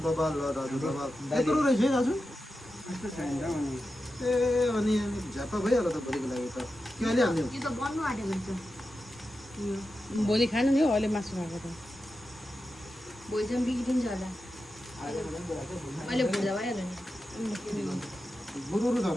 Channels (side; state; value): both; normal; correlation 0.90